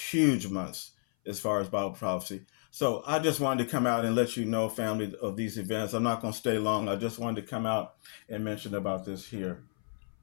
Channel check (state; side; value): silent; right; 56 dB below the other